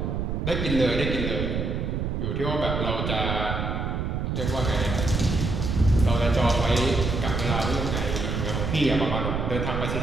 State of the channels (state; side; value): noise; right; rumble, 1 dB below the sound